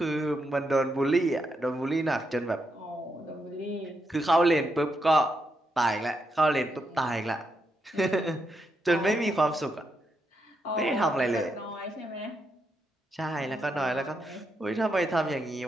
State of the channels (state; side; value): normal; both; correlation 0.82